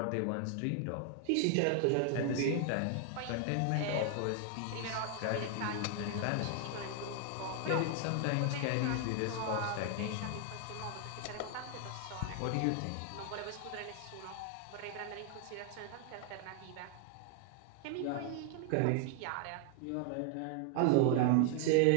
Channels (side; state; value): both; different; correlation 0.00